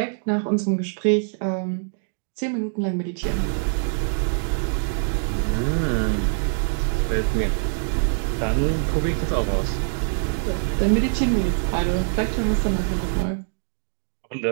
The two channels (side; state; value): left; silent; 63 dB below the other